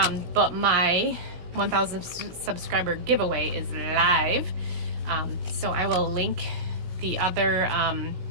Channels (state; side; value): late; left; 17 ms